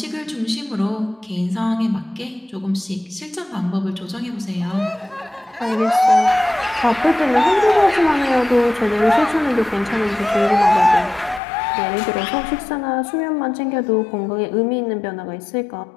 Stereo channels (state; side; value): drops out; right; at 11.4 s